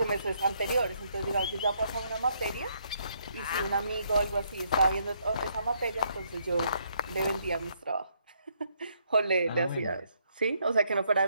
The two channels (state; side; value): inverted; both; correlation -0.72